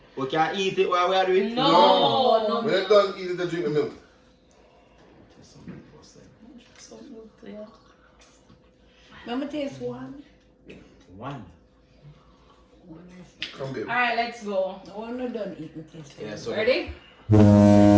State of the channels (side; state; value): both; identical; correlation 1.00